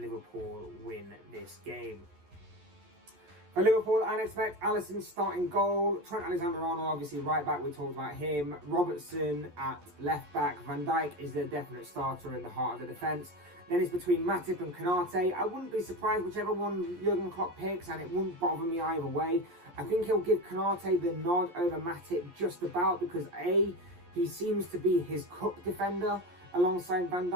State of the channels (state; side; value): late; left; 11 ms